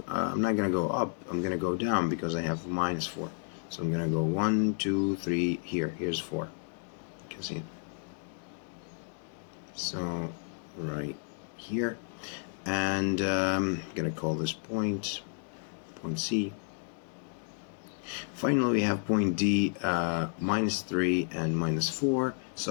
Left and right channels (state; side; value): silent; right; 56 dB below the other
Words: go up. I'm gonna go down because I have minus 4. So I'm gonna go 1, 2, 3 here. Here's 4. You can see it. So right here, and I'm gonna call this point C. Finally, we have point D, minus 3 and minus 4.